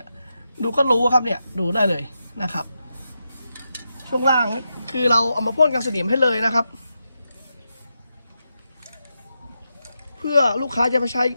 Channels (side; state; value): both; inverted; correlation -0.87